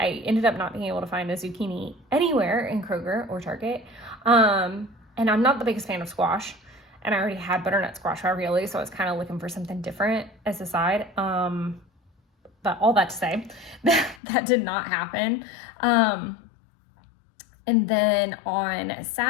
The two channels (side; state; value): right; drops out; at 14.2 s